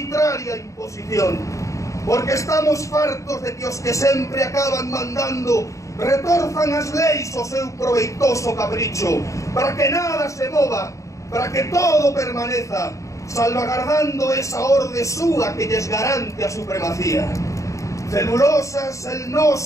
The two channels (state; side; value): late; right; 0.15 ms